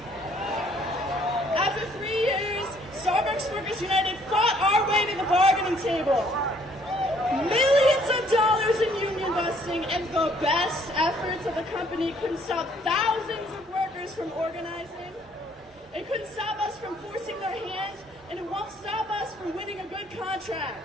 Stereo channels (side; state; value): both; normal; correlation 0.63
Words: After 3 years, Starbucks Workers United fought our way to the bargaining table. Millions of dollars in union busting and the best efforts of the company couldn't stop thousands of workers from organizing. It couldn't stop us from forcing their hand, and it won't stop us from winning a good